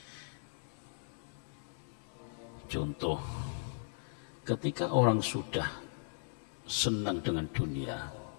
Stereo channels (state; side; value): silent; right; digital silence